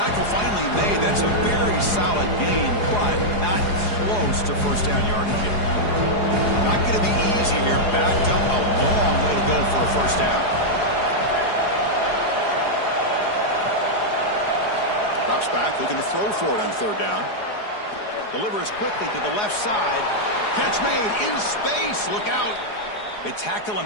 finally made. That's a very solid gain, but not close to first down yardage yet. Not going to be easy here. Backed up a long way to go for a first down. Drops back, looking to throw for it on third down. Delivers quickly to the left side. Catch made in space. Look out. They tackle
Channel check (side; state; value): right; late; 4.8 ms